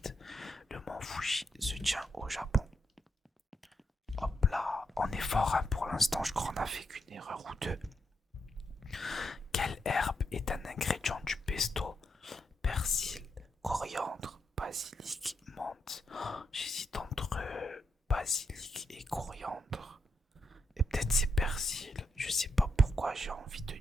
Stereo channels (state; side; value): normal; both; correlation 0.81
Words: Le mont Fuji se tient au Japon. Hop là, on est fort hein, pour l'instant, je crois qu'on a fait qu'une erreur ou deux. Quelle herbe est un ingrédient du pesto? Persil, coriandre, basilic, menthe. Oh, j'hésite entre basilic et coriandre. Et peut-être c'est persil. Je sais pas pourquoi j'ai envie de